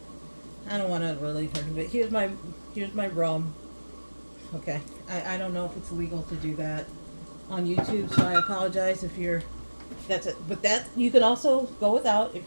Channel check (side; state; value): both; inverted; correlation -1.00